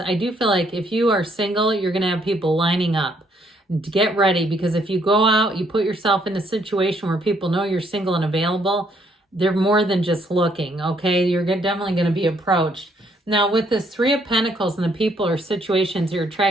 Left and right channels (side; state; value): both; normal; correlation 0.69